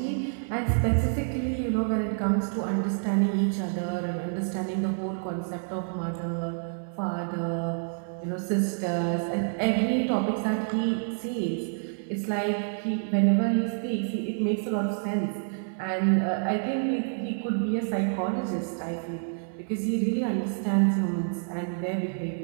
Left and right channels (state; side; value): silent; left; 59 dB below the other